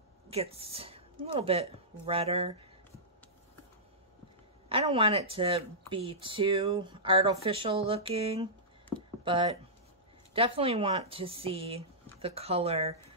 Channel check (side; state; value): both; normal; correlation -0.16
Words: gets a little bit redder. I don't want it to be too artificial looking, but definitely want to see the color